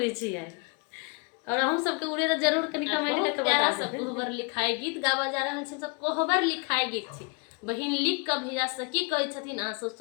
छे। और हम सबके उड़े तो जरूर कनी कमेंट करके प्यारा बता सब देब। कोहबर लिखाए गीत गावा जा रहल छी। सब कोहबर लिखाए गीत छी, बहिन लिख के भेजा सकी कहै छथिन, अहाँ सब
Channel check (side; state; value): right; quieter; 33.4 dB